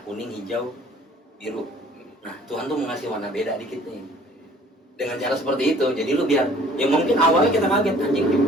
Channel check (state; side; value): normal; both; correlation 0.54